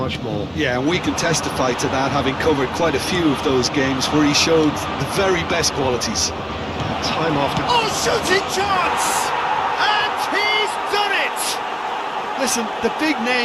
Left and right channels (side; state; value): both; identical; correlation 1.00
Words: more. Yeah, and we can testify to that, having covered quite a few of those games where he showed the very best qualities. Time after... Oh, shooting chance! And he's done it! Listen, the big